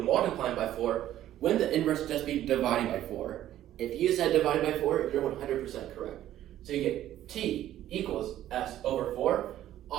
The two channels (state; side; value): quieter; left; 12.7 dB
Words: by 4, wouldn't the inverse just be dividing by 4? If you said dividing by 4, you're 100% correct. So you get T equals S over 4,